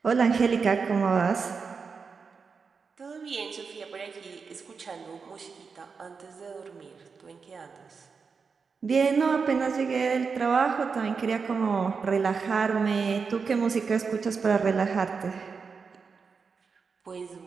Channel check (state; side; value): quieter; left; 5.3 dB